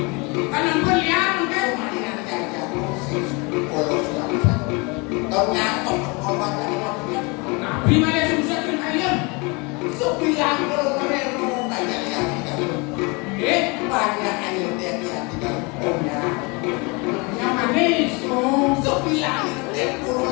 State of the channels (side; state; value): right; quieter; 28.7 dB